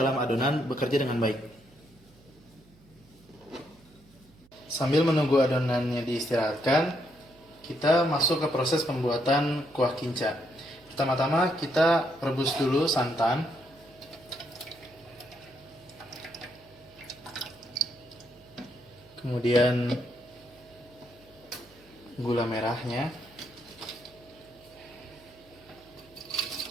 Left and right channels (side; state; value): right; noise; hum, 27 dB below the sound